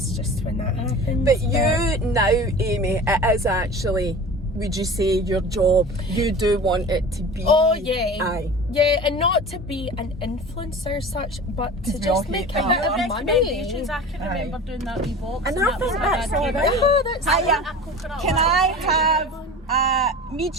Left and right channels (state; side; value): normal; both; correlation 0.36